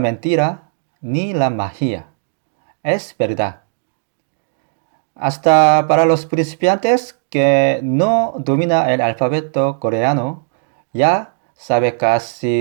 ni la magia. Es verdad. Hasta para los principiantes que no domina el alfabeto coreano, ya sabe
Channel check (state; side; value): silent; left; digital silence